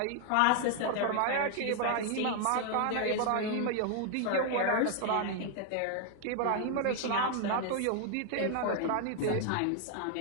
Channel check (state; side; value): different; both; correlation 0.00